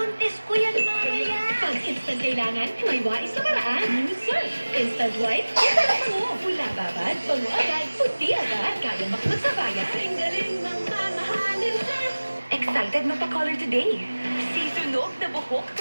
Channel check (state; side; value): inverted; both; correlation -1.00